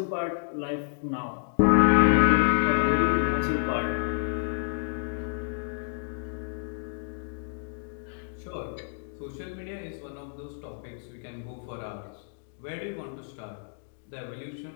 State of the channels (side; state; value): right; silent; digital silence